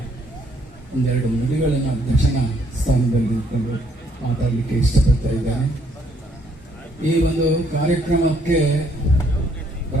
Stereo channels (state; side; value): normal; both; correlation 0.68